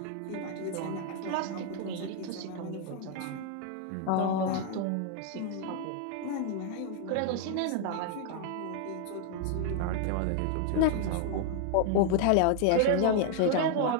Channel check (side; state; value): both; different; correlation 0.00